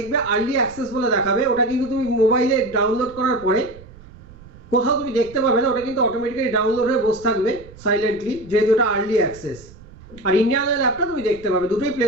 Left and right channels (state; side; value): noise; right; rumble, 21 dB below the sound